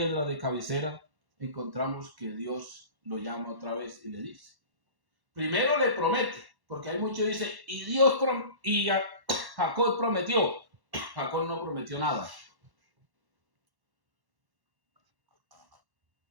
de cabecera, encontramos que Dios lo llama otra vez y le dice. Primero le promete, porque hay muchos que dicen, y Jacob prometió. Jacob no prometió nada.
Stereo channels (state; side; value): late; left; 1.1 ms